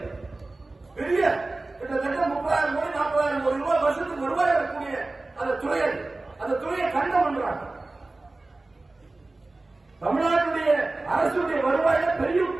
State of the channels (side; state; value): left; quieter; 3.1 dB